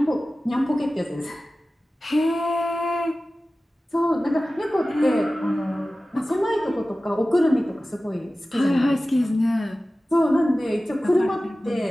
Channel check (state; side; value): normal; both; correlation 0.96